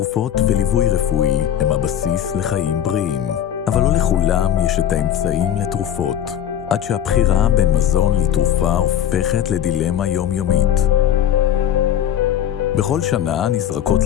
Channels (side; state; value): right; quieter; 10.3 dB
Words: וליווי רפואי הם הבסיס לחיים בריאים, אבל לא לכולם יש את האמצעים לתרופות, עד שהבחירה בין מזון לתרופה הופכת לדילמה יומיומית. בכל שנה נזרקות